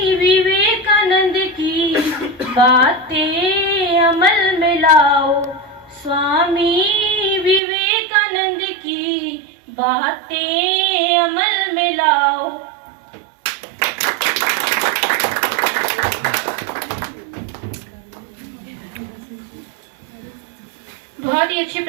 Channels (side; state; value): left; drops out; at 7.6 s